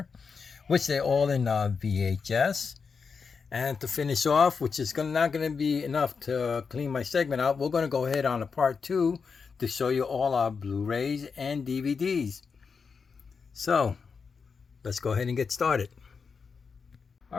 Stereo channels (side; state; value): right; quieter; 5.5 dB